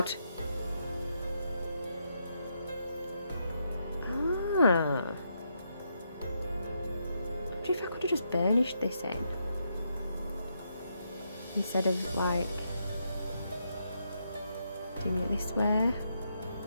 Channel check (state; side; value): inverted; both; correlation -0.80